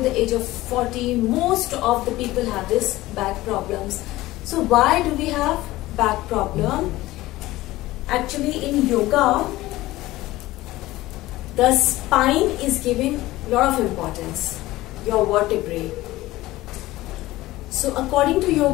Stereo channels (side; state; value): right; quieter; 17.6 dB